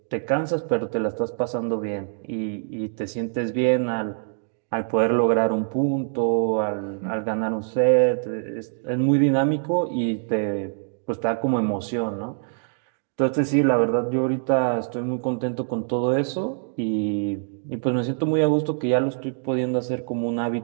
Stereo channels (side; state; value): left; silent; digital silence